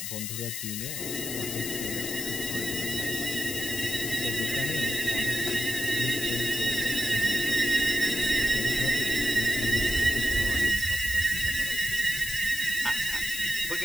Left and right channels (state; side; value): noise; left; hiss, 5 dB below the sound